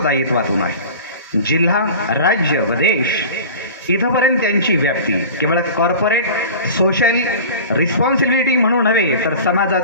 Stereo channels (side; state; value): both; inverted; correlation -0.37